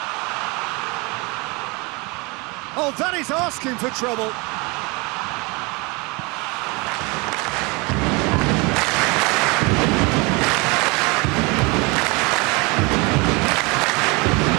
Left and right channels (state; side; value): quieter; left; 27.4 dB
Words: Oh, that is asking for trouble.